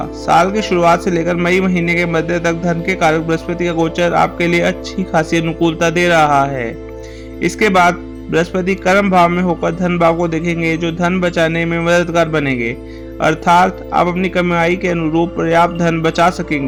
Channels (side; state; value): both; identical; correlation 1.00